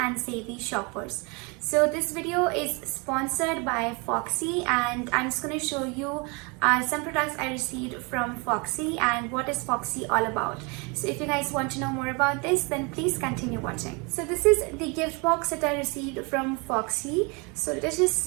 and savvy shoppers. So this video is sponsored by Foxy, and I'm just going to show you some products I received from Foxy and what is Foxy all about. So if you guys want to know more about this, then please continue watching. So this is the gift box that I received from Foxy. So let's just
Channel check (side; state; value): left; quieter; 30.4 dB